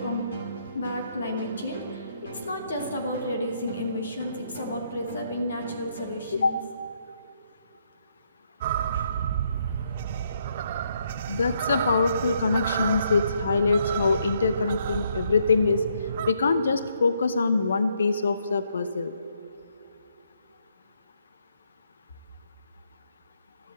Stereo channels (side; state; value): both; inverted; correlation -0.73